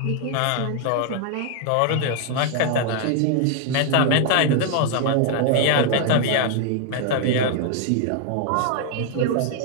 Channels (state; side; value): different; both; correlation 0.00